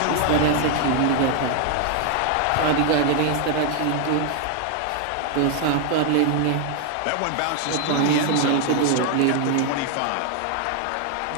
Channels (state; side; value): different; both; correlation 0.00